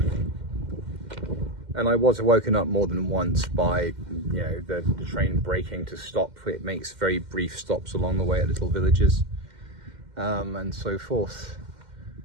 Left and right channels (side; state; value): left; late; 2.1 ms